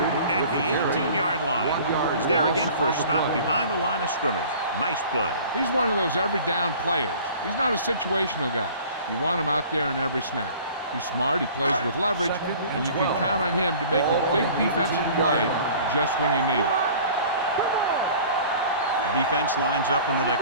at the 18-yard line. He's there again for a stop behind the line of scrimmage. Nice play. He's one of those every down players. He's not a situational guy. You want him out there in every snap. He's smart, he plays with leverage, and you can count on him to make a big defensive play just when you need it. The defense lines up in the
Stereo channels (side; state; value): both; inverted; correlation -0.46